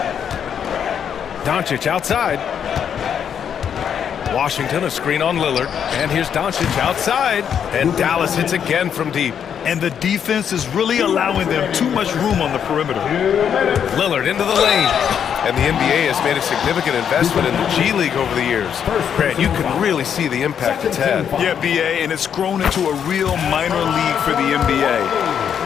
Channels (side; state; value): right; quieter; 8.2 dB